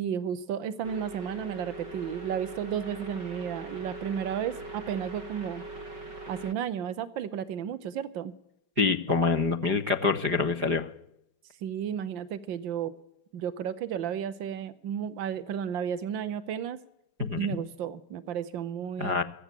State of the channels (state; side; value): late; left; 5.8 ms